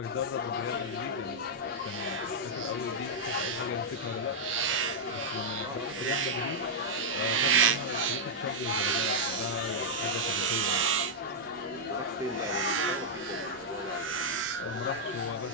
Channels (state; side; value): normal; both; correlation -0.05